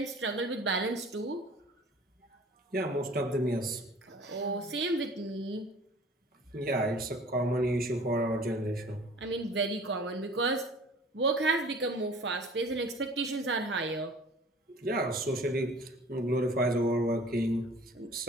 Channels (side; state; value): both; normal; correlation 0.47